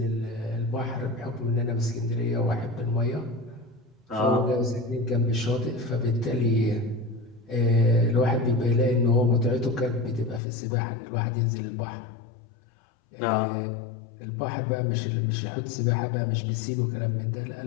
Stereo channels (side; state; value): right; drops out; at 10.4 s